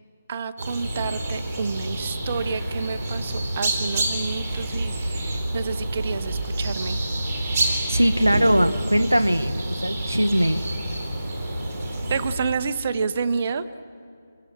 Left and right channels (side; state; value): both; inverted; correlation -0.91